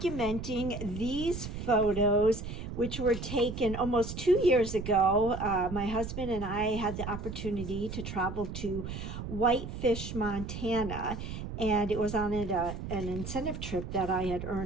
these photos which were taken almost 2 years ago. My husband and I had the opportunity to travel to Whitefish, Montana, and it was on an incentive trip that I had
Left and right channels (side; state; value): right; noise; rumble, 7 dB below the sound